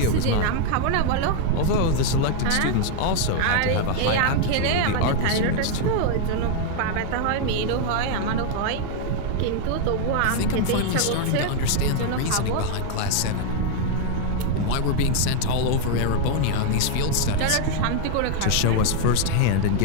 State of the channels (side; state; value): both; different; correlation 0.00